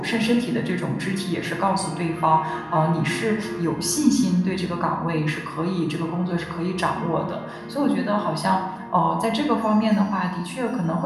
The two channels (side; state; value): both; identical; correlation 1.00